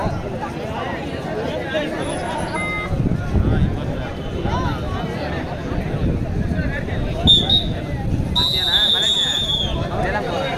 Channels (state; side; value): identical; both; correlation 1.00